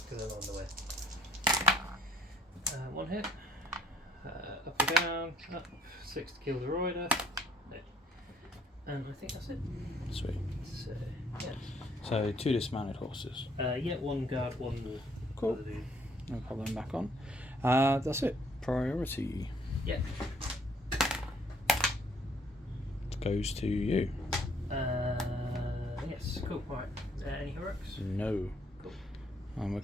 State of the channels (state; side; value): normal; both; correlation 0.63